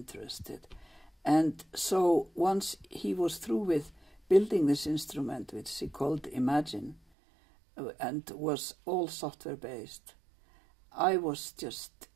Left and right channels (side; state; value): left; drops out; at 7.0 s